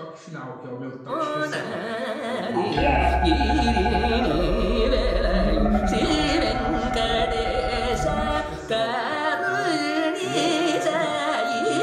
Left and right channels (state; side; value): identical; both; correlation 1.00